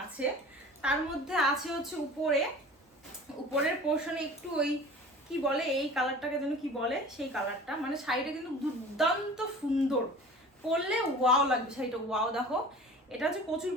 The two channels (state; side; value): normal; both; correlation 0.41